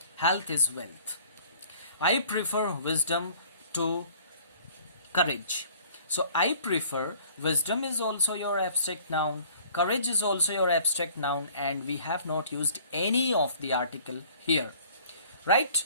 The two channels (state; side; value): inverted; both; correlation -0.53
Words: Health is wealth. I prefer wisdom to courage. So I prefer, wisdom is also your abstract noun. Courage is also your abstract noun and we have not used any of the article here. Right?